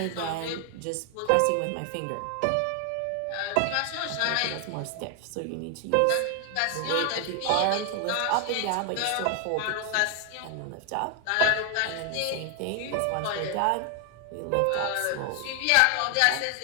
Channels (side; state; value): both; different; correlation 0.00